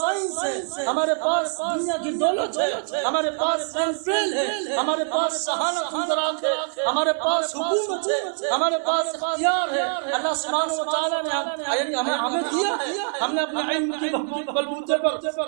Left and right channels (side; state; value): left; silent; 57 dB below the other